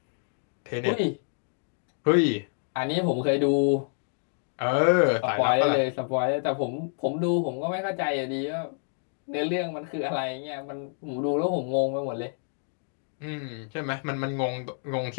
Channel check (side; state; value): right; silent; digital silence